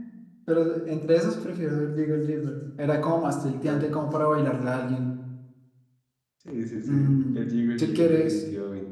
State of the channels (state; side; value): identical; both; correlation 1.00